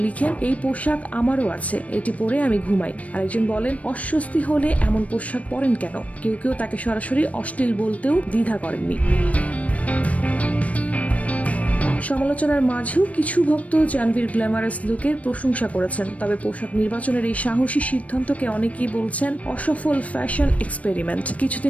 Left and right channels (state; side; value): late; right; 0.067 ms